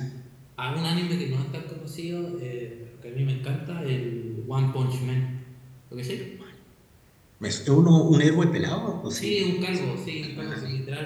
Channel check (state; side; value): identical; both; correlation 1.00